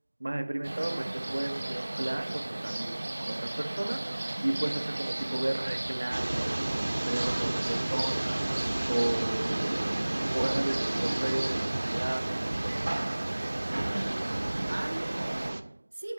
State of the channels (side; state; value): both; inverted; correlation -1.00